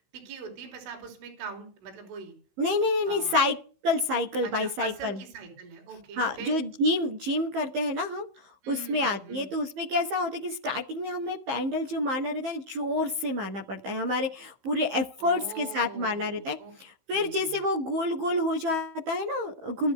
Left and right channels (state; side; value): late; left; 15 ms